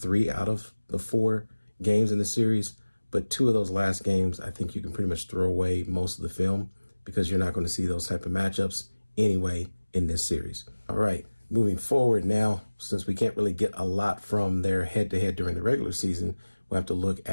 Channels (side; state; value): both; inverted; correlation -1.00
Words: out of the 4 games in the series, but 2 of those last games, I think you can pretty much throw away most of the film, because you're not going to see those type of matchups anyway in this series. All right, moving forward now, since we can't really get a lot from their head-to-head during the regular season, we'll have to look